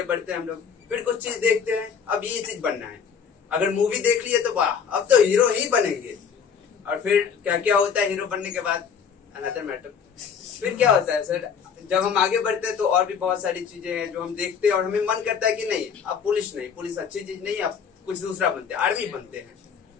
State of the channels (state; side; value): quieter; right; 6.9 dB